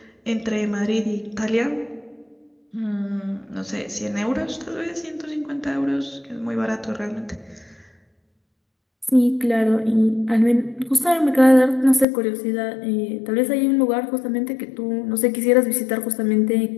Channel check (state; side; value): drops out; right; at 12.1 s